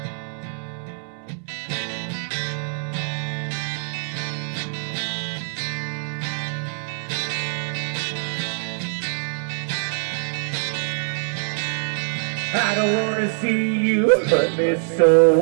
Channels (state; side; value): silent; left; 60 dB below the other